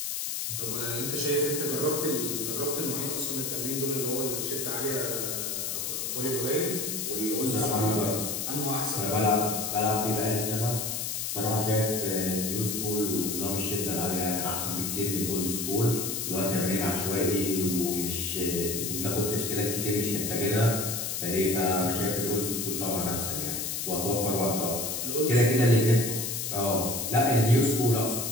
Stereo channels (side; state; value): left; noise; hiss, 2 dB below the sound